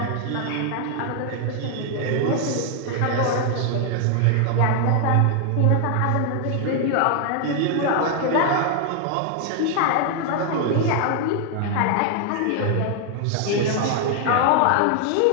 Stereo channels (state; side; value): different; both; correlation 0.00